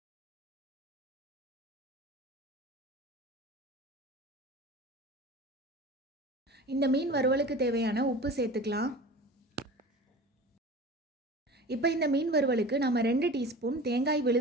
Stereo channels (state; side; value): normal; both; correlation 0.37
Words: இந்த மீன் வறுவலுக்கு தேவையான உப்பு சேர்த்துக்கலாம். இப்போ இந்த மீன் வறுவலுக்கு நம்ம 2 டீஸ்பூன் தேங்காய்